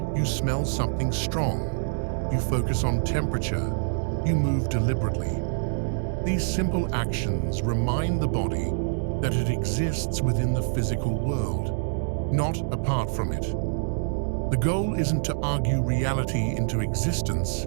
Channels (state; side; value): silent; left; digital silence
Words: You smell something strong, you focus on temperature, you move deliberately. These simple actions remind the body that it exists within the physical world, not apart from it. The goal isn't to argue reality into existence,